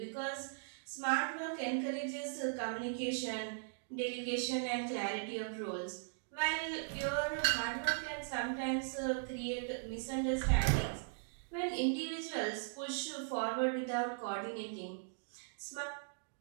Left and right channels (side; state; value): left; silent; digital silence